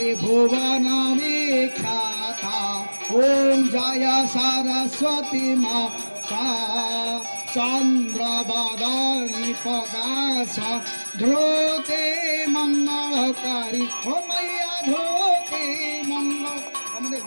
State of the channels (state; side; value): inverted; both; correlation -1.00